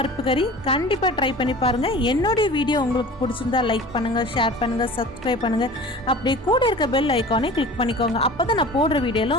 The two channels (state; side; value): normal; both; correlation 0.40